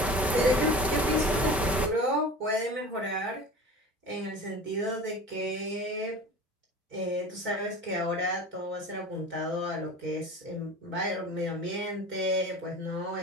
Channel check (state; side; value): normal; both; correlation 0.37